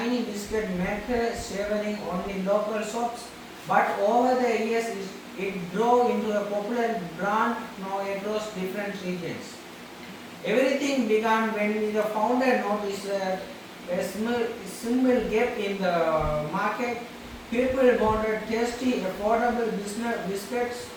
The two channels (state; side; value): identical; both; correlation 1.00